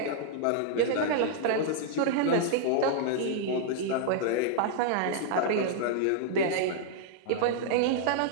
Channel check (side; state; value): both; different; correlation -0.01